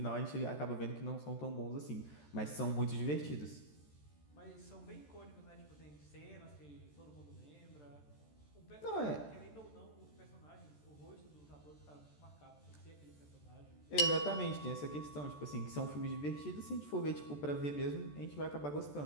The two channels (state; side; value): late; right; 14 ms